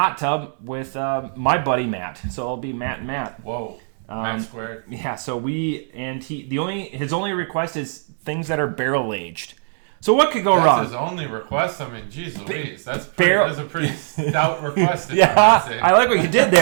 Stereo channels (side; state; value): left; silent; digital silence